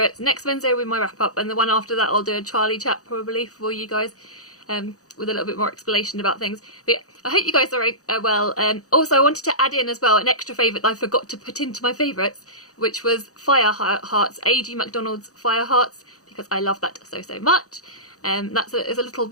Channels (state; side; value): late; right; 0.66 ms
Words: next Wednesday will be my wrap up, and the one after that I'll do a Charlie chat probably for you guys. With a little bit more explanation about things. But yeah, I hope you guys are well. Also, I wanted to add in as well an extra favourite that I forgot to put into my favourites, which was Fire Hearts, A.G. MacDonald's Fire Hearts, because I love that so much. It's a little